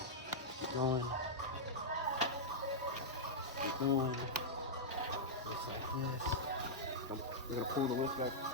Keep going. Keep going. Just like this. We're gonna pull the lift back.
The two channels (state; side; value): normal; both; correlation -0.07